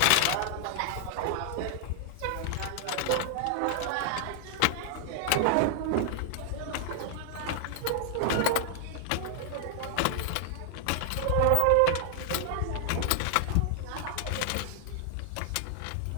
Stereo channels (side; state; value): both; different; correlation 0.00